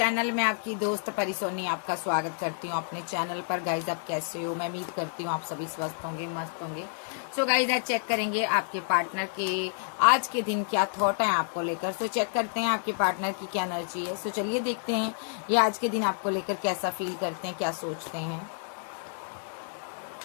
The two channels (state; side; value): silent; right; 58 dB below the other